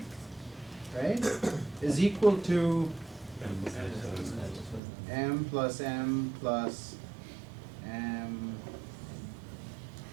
right, is equal to m plus m plus m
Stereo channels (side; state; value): left; drops out; at 4.8 s